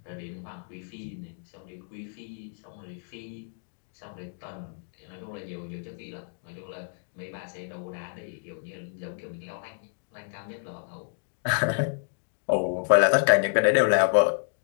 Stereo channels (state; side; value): silent; right; digital silence